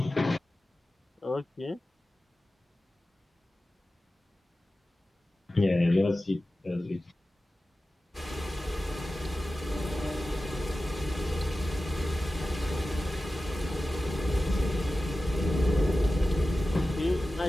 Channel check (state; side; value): normal; both; correlation 0.95